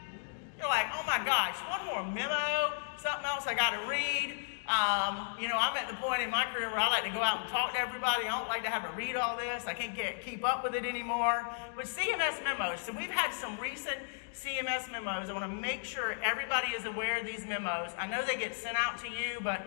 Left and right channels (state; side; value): silent; right; digital silence